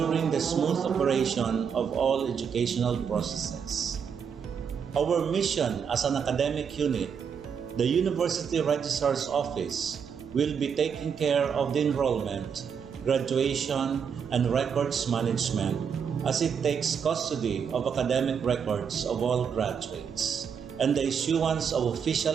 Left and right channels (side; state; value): left; quieter; 7.0 dB